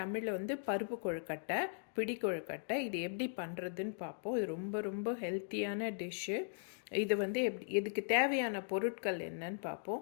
வந்து பருப்பு கொழுக்கட்டை, பிடி கொழுக்கட்டை. இது எப்படி பண்ணுறதுன்னு பார்ப்போம். இது ரொம்ப ரொம்ப ஹெல்த்தியான டிஷ்ஷு. இது வந்து இதுக்கு தேவையான பொருட்கள் என்னன்னு பார்ப்போம்.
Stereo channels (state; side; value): silent; right; digital silence